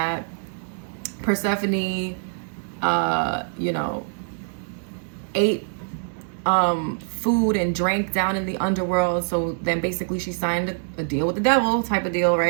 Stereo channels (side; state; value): left; silent; digital silence